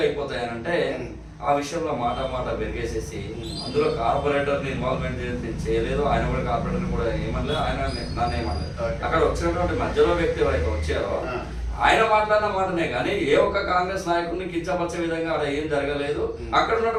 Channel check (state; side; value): identical; both; correlation 1.00